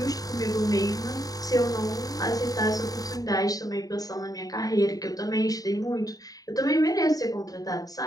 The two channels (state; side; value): late; right; 0.18 ms